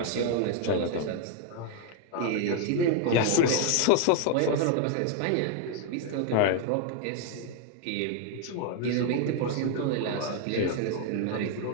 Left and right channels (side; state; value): both; different; correlation 0.01